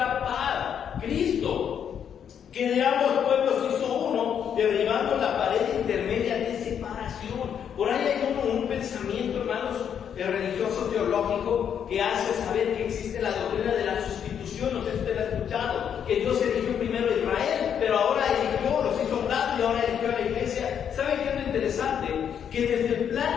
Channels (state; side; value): quieter; right; 8.4 dB